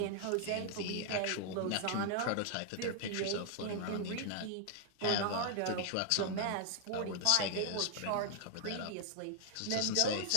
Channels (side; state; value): both; different; correlation 0.00